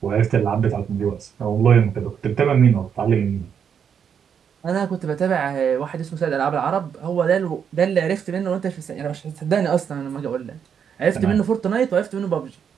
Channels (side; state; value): left; quieter; 7.6 dB